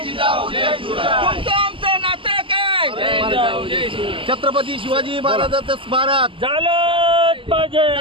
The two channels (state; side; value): late; left; 0.25 ms